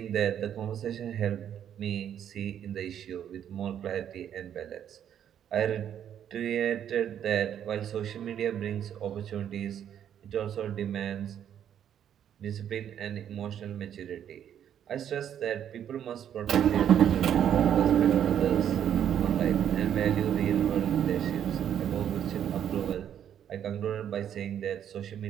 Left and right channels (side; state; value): left; quieter; 9.6 dB